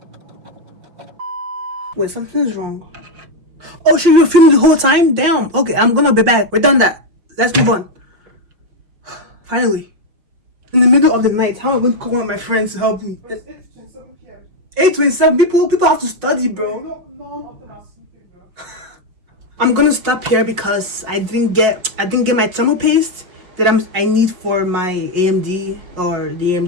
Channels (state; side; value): late; left; 5.7 ms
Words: Wait, something's wrong. Oh shit, you were filming the whole time? Damn. Okay, I'm gonna be back. We're done that. Let's move on. Finally. In the middle of the night, how am I going to call one of my friends to help me? 8:27. People have to study, bro. I'm gonna stop here because I didn't get my thermal paste that I need for my AMD or the